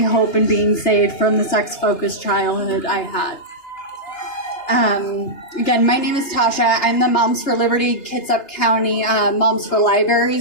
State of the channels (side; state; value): right; late; 2.8 ms